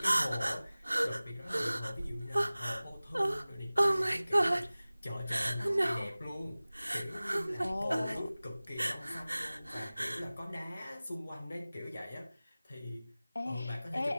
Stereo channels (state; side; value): inverted; both; correlation -0.98